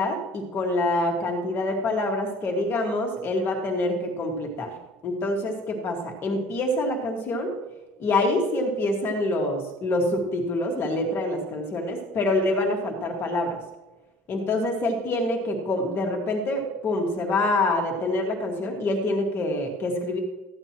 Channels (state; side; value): normal; both; correlation 0.50